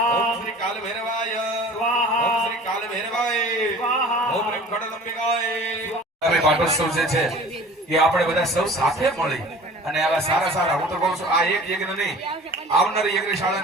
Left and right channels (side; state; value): both; normal; correlation 0.44